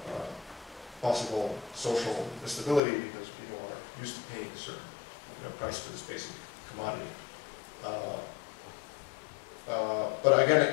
possible social instability because people are used to paying a certain price for this basic commodity. But again,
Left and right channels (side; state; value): right; drops out; at 2.8 s